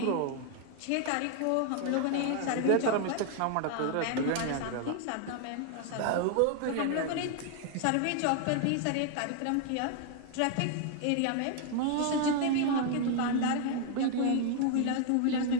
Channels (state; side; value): different; both; correlation 0.00